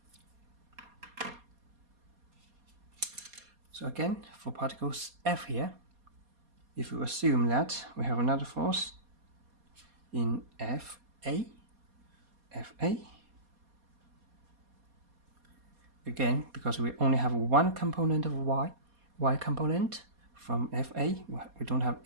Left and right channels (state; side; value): late; left; 4.2 ms